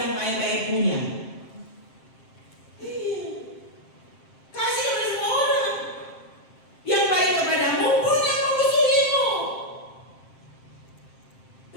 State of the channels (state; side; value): late; right; 7.6 ms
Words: baik-baik punya. Kasih kepada semua orang. Yang baik kepadamu pun yang memusuhimu.